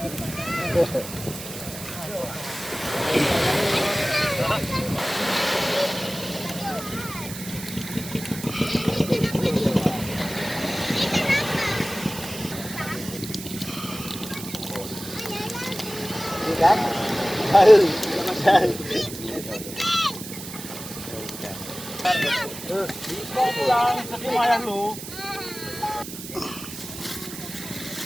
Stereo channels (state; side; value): noise; right; hiss, 11 dB below the sound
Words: Kan? Macam. Kau pulang, tapi mayang lu.